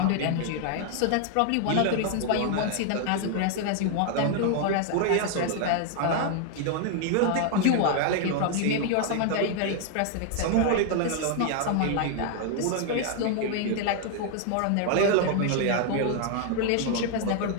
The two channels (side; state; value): both; different; correlation 0.00